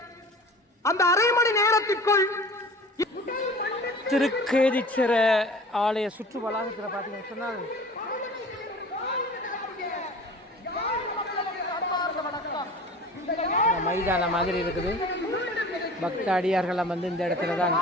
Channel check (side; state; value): both; normal; correlation 0.42